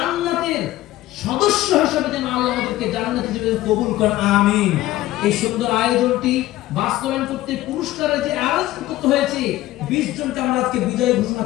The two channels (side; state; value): right; quieter; 15.9 dB